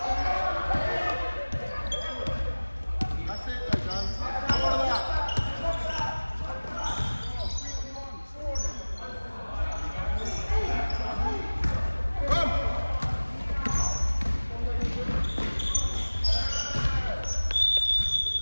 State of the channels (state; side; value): inverted; both; correlation -1.00